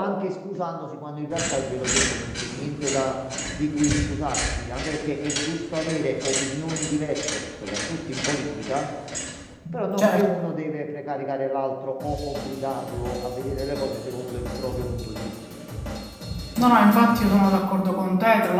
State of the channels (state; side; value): identical; both; correlation 1.00